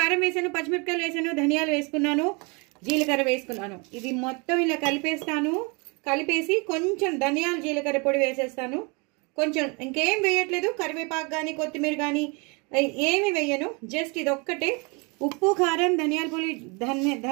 వేశాను, పచ్చిమిరపకాయలు వేశాను, ధనియాలు వేసుకున్నాను, జీలకర్ర వేసుకున్నాను. ఇది మొత్తం ఇలా కలిపేస్తాను. కలిపేసి కొంచెం ధనియాలు జీలకర్ర పొడి వేసేస్తాను. కొంచెం ఇంకేం వేయట్లేదు, కరివేపాకు కానీ కొత్తిమీర కానీ ఏమి వేయను. జస్ట్ ఇది ఒక్కటే ఉప్పు, కారం,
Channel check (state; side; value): quieter; left; 30.7 dB